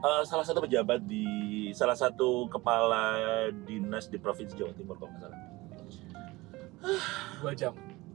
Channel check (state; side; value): quieter; left; 20.8 dB